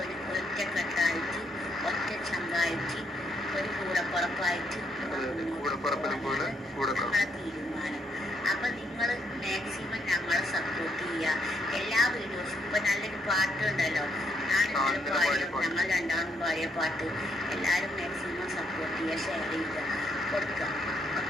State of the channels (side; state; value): both; normal; correlation 0.75